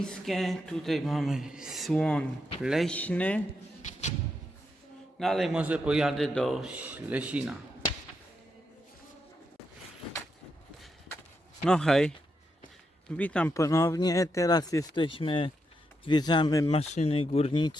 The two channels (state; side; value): normal; both; correlation 0.82